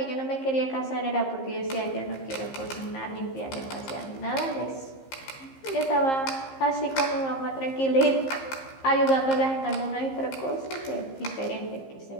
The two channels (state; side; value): late; right; 15 ms